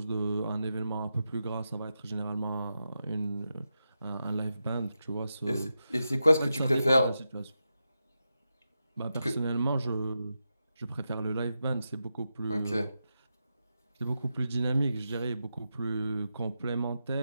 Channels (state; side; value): inverted; both; correlation -0.88